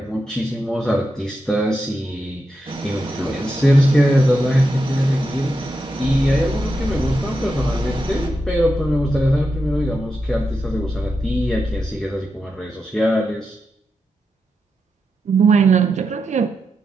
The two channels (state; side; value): normal; both; correlation 0.87